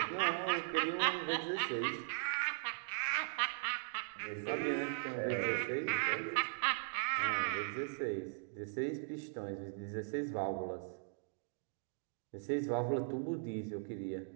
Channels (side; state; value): left; silent; digital silence